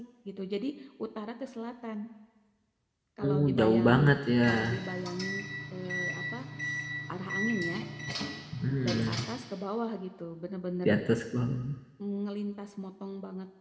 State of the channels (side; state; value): both; identical; correlation 1.00